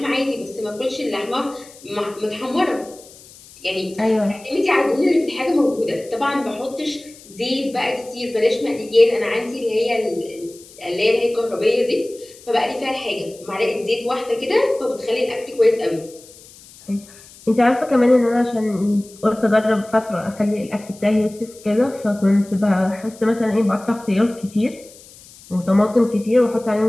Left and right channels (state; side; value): noise; left; hiss, 22 dB below the sound